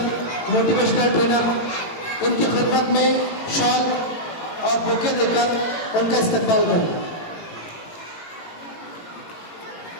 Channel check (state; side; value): late; right; 18 ms